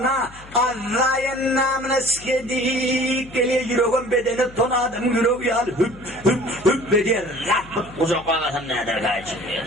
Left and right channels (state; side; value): noise; left; hum, 20 dB below the sound